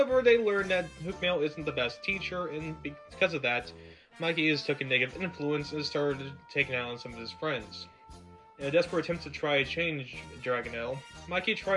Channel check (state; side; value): identical; both; correlation 1.00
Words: they learn that Hookmail isn't the best teacher, and because of that, Mikey has took a negative influence and started taking out on some of his friends. In a desperate attempt to try to change Dragonel, Mikey